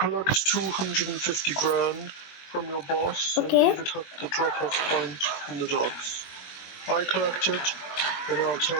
collect 250 grand from your boss Okay. and leave it at the drop-off point in the docks. I collect it, and I'll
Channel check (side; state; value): right; late; 21 ms